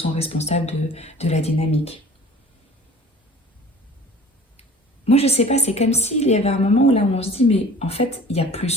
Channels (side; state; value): both; normal; correlation 0.46